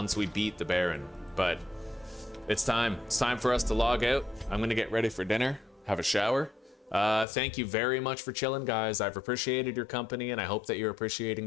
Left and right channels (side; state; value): right; drops out; at 7.2 s